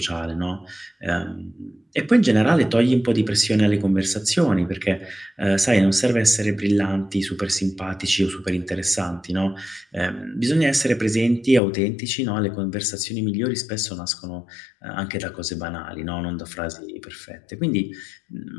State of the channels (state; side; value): drops out; right; at 11.6 s